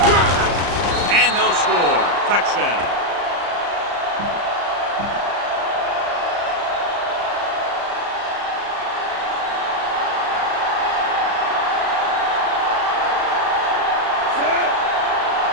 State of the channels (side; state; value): left; late; 34 ms